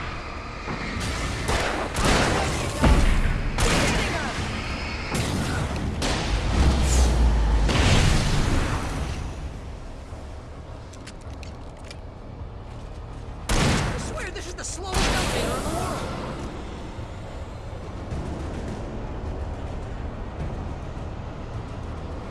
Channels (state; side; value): identical; both; correlation 1.00